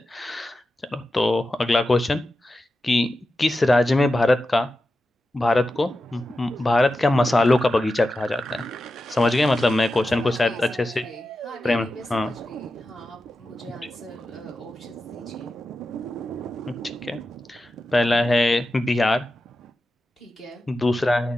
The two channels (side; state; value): both; normal; correlation 0.91